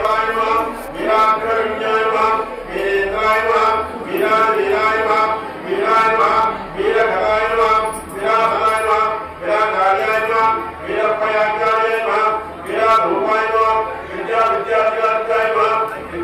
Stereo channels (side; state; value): both; identical; correlation 1.00